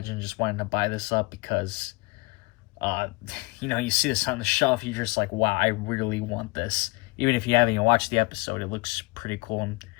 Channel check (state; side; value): quieter; right; 24.5 dB